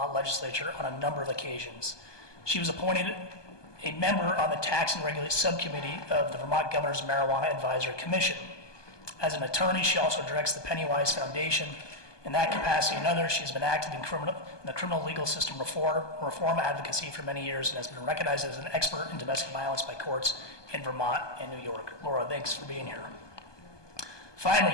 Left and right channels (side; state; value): right; late; 1.2 ms